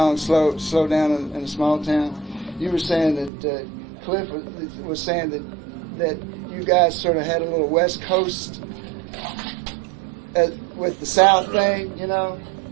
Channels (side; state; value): left; drops out; at 3.3 s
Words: "Slow Down in a Small Town." You were saying that Cliff was saying that you guys sort of had a little West Coast with the South thing, you know.